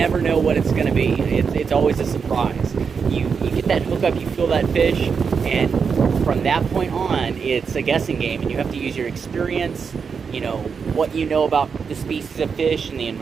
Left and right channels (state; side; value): quieter; left; 6.0 dB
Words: know what it's going to be. It's always a surprise. You get that hook up, you feel that fish, and from that point on, it's a guessing game, and you have to use your experience, you know, what you know about the species of fish and the